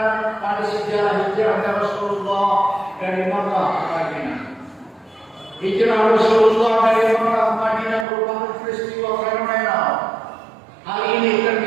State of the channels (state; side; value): drops out; left; at 8.1 s